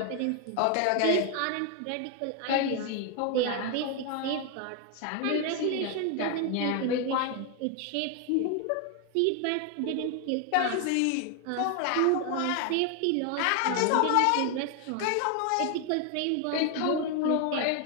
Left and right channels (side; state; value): both; different; correlation 0.01